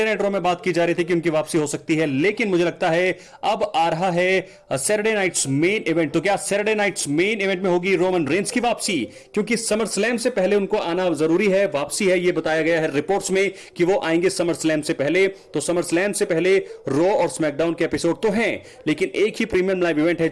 नाइट रॉ में बात की जा रही थी कि उनकी वापसी हो सकती है, लेकिन मुझे लगता है अब आ रहा है सैटरडे नाइट्स मेन इवेंट। तो क्या सैटरडे नाइट्स मेन इवेंट में होगी रोमन रेंस की वापसी? क्योंकि समर स्लैम से पहले उनको आना जरूरी है। वापसी है ये बताया गया है रिपोर्ट्स में कि वो आएंगे समर स्लैम से पहले। तो समर स्लैम से पहले रॉ और स्मैकडाउन के एपिसोड तो हैं, लेकिन एक ही प्रीमियम लाइव इवेंट है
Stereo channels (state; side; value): identical; both; correlation 1.00